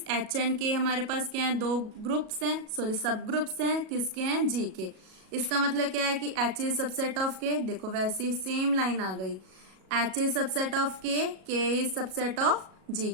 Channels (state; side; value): late; left; 37 ms